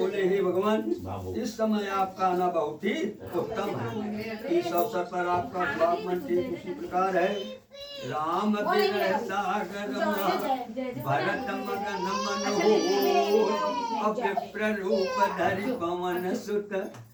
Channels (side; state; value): both; identical; correlation 1.00